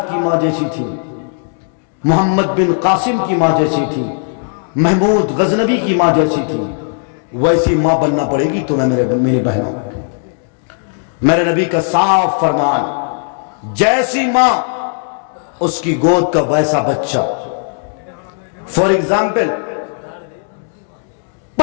की माँ जैसी थी, मोहम्मद बिन कासिम की माँ जैसी थी, महमूद गजनबी की माँ जैसी थी, वैसी माँ बनना पड़ेगी तुम्हें मेरी बहनों। मेरे नबी का साफ फरमान, जैसी माँ उसकी गोद का वैसा बच्चा। फॉर एग्जाम्पल,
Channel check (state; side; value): silent; right; digital silence